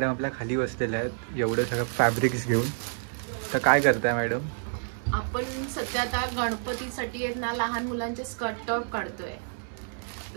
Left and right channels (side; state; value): left; silent; 59 dB below the other